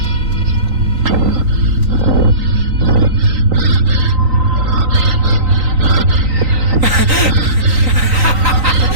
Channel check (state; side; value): late; left; 3.9 ms